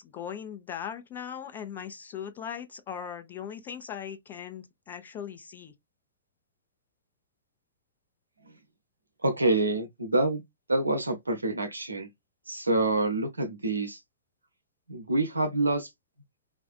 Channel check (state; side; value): inverted; both; correlation -0.60